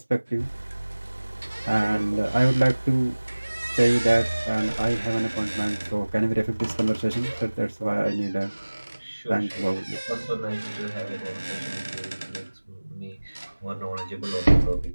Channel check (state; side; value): inverted; both; correlation -1.00